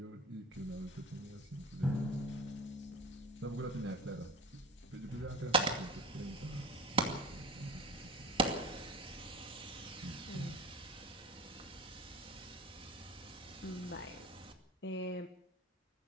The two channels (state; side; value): normal; both; correlation 0.34